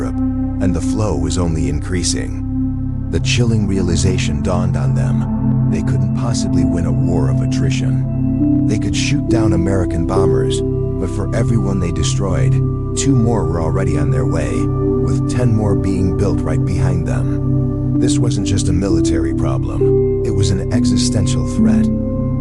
and the flow was only increasing. The chilling realization dawned on them: they couldn't possibly win a war of attrition. They could shoot down American bombers, but for every one they destroyed, 2 more were already on their way, with 10 more being built right behind them. This wasn't just a military problem, it was an existential threat.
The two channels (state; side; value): identical; both; correlation 1.00